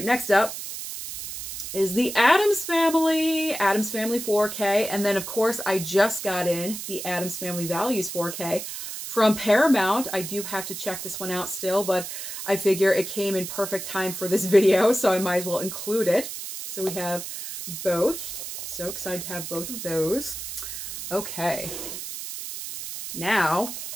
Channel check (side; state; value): right; noise; hiss, 8 dB below the sound